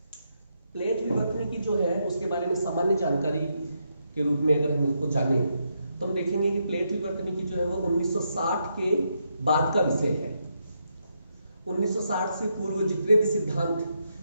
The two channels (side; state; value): both; inverted; correlation -0.80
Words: प्लेट विवर्तन की जो है उसके बारे में सामान्य जानकारी के रूप में अगर हम इसको जाने तो हम देखेंगे कि प्लेट विवर्तन की जो है वो 1960 के बाद का विषय है। 1960 से पूर्व जितने भी सिद्धांत,